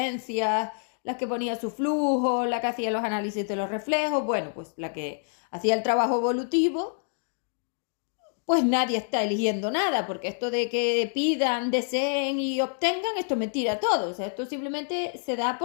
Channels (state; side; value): silent; right; digital silence